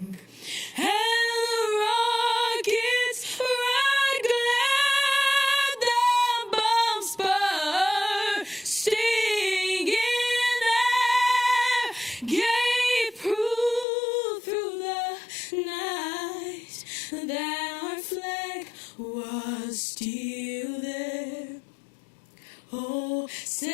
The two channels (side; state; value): right; drops out; at 13.9 s